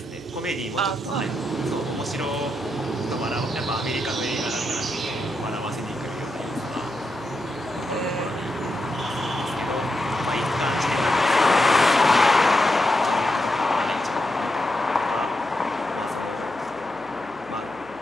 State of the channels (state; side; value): noise; right; hum, 22 dB below the sound